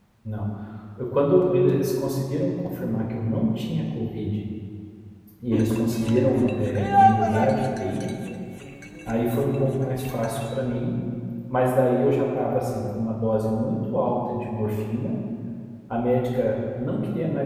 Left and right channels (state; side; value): identical; both; correlation 1.00